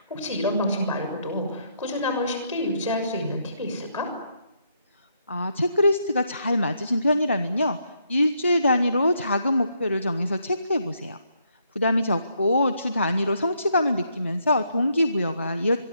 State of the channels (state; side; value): inverted; both; correlation -0.75